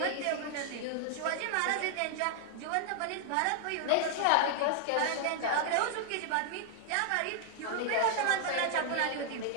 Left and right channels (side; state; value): both; different; correlation 0.00